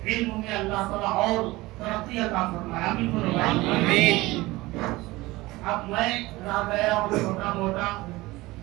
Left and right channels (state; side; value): quieter; left; 20.0 dB